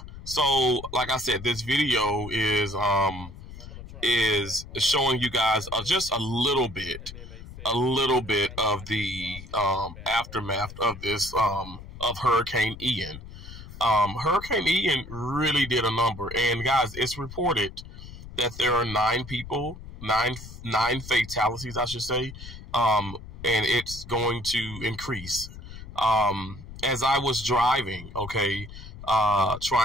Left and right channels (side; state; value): left; noise; rumble, 14 dB below the sound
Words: So, like I said, this video is showing you guys just a little bit of the aftermath of this of Hurricane Ian. Hurricane Ian really did a number, and guys, it's reported that there are 9 fatalities, I should say, and it's going to increase. As I was driving, okay,